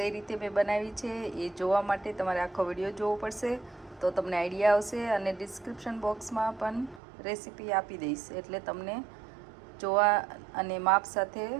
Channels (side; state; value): left; drops out; at 7.0 s